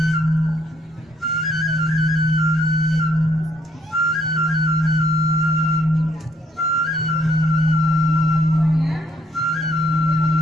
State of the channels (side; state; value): both; normal; correlation 0.68